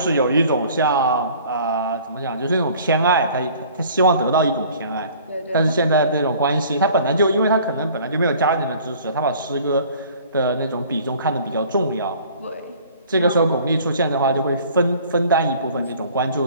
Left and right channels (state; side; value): inverted; both; correlation -0.51